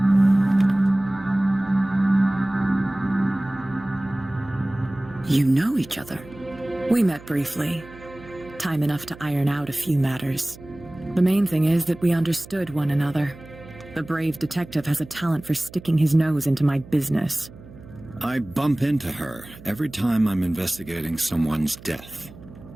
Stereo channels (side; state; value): right; noise; hum, 19 dB below the sound